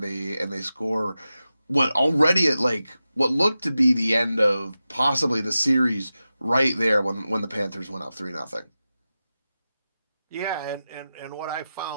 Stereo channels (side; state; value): both; inverted; correlation -0.93